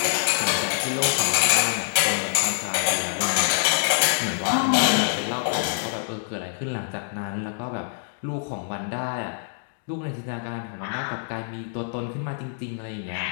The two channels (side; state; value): right; silent; digital silence